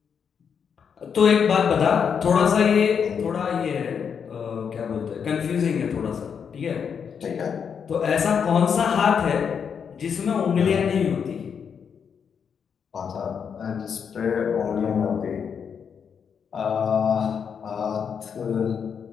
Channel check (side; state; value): right; quieter; 7.0 dB